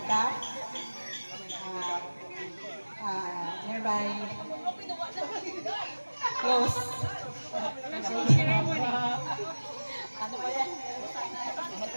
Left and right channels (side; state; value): both; inverted; correlation -1.00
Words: Nearby close. Ano ba yan?